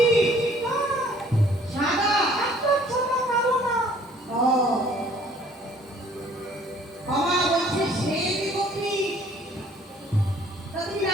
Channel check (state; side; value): normal; both; correlation 0.57